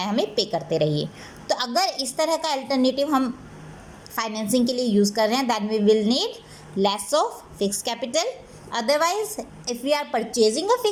हमें पे करते रहिए। तो अगर इस तरह का अल्टरनेटिव हम फाइनेंसिंग के लिए यूज़ कर रहे हैं, that we will need less of fix capital. Otherwise if we are purchasing a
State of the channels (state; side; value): identical; both; correlation 1.00